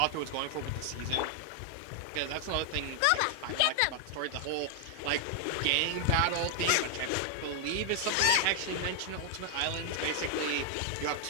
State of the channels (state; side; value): different; both; correlation 0.00